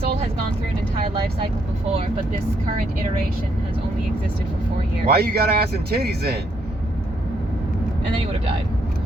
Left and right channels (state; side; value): normal; both; correlation 0.73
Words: has gone through an entire life cycle before, but this current iteration has only existed for 4 years. Why you got ass and titties in? And then he would have died.